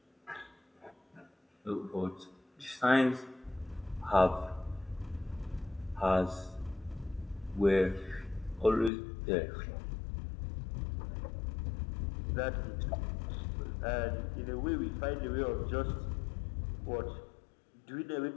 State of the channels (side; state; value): right; drops out; at 8.9 s